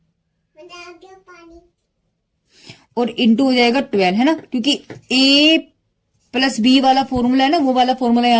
और इंटू हो जाएगा 12 है ना, क्योंकि a प्लस बी वाला फॉर्मूला है ना, वो वाला फॉर्मूला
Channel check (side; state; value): both; identical; correlation 1.00